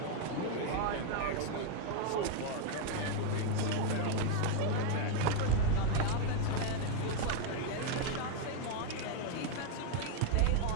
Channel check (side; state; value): both; different; correlation 0.00